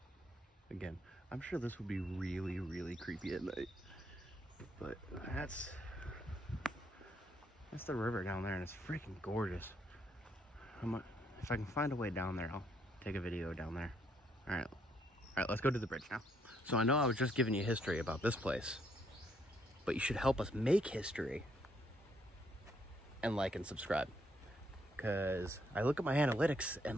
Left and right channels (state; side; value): normal; both; correlation 0.72